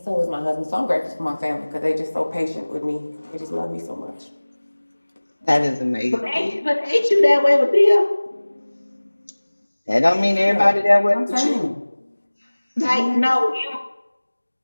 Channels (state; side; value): inverted; both; correlation -1.00